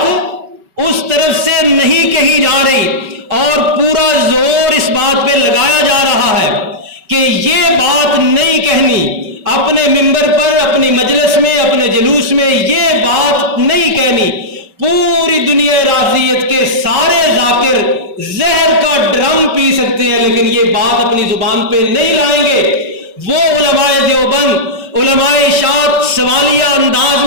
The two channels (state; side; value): late; left; 5.2 ms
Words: اس طرف سے نہیں کہی جا رہی اور پورا زور اس بات پہ لگایا جا رہا ہے کہ یہ بات نہیں کہنی، اپنے ممبر پر، اپنی مجلس میں، اپنے جلوس میں یہ بات نہیں کہنی۔ پوری دنیا رافضیت کے سارے ذاکر زہر کا ڈرم پی سکتے ہیں لیکن یہ بات اپنی زبان پہ نہیں لائیں گے۔ وہ علماء دیوبند، علماء اشاعت سوالیہ انداز